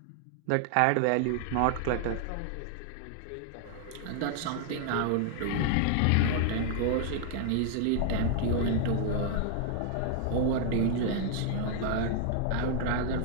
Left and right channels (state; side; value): different; both; correlation 0.00